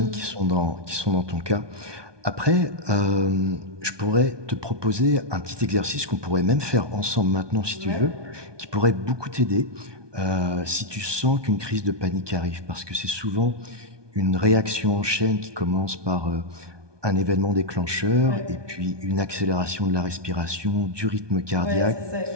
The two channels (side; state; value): left; late; 1.2 ms